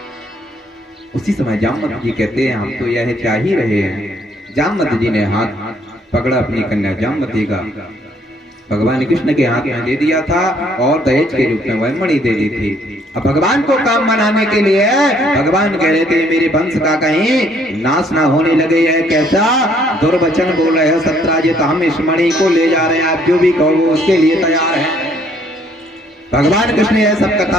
उसी समय जामवंत जी कहते हैं हम तो यह चाह ही रहे हैं। जामवंत जी ने हाथ पकड़ा अपनी कन्या जामवती का, भगवान कृष्ण के हाथ में दे दिया था और दहेज के रूप में वह मणि दे दी थी। अब भगवान को काम बनाने के लिए भगवान कह रहे थे मेरे वंश का कहीं नाश ना होने लगे, यह कैसा दुर्वचन बोल रहे हो सत्राजित, हम इस मणि को ले जा रहे हैं, आप जो भी कहो उसके लिए तैयार है। भगवान कृष्ण यह सब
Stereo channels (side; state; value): both; normal; correlation 0.65